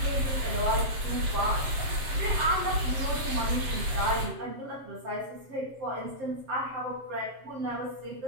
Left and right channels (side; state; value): left; late; 7.5 ms